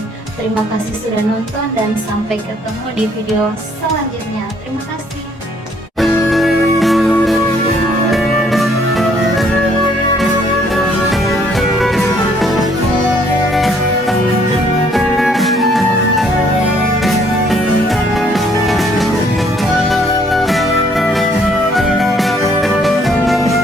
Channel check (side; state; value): both; normal; correlation 0.64